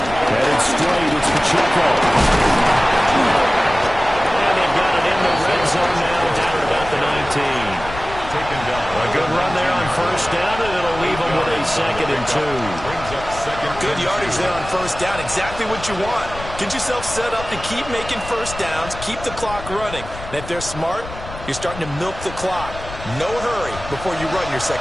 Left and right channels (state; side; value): noise; left; rumble, 12 dB below the sound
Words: Headed straight, it's Pacheco. And they've got it in the red zone now, down at about the 19. Taken down. A good run there on 1st down, and it'll leave them with a 2nd and 2. Good yardage there on 1st down, exactly what you want. Get yourself set up to keep making 1st downs, keep the clock running. And if they're smart, you're starting to milk the clock. No hurry before you run your